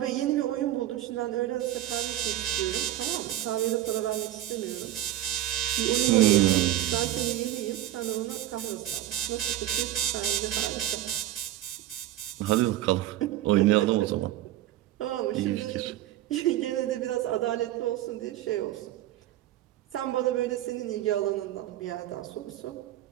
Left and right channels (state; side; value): quieter; left; 13.7 dB